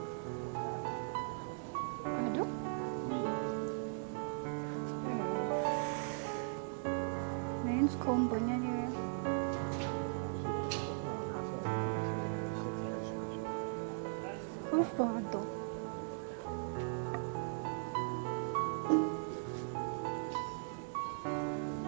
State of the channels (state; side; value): silent; left; digital silence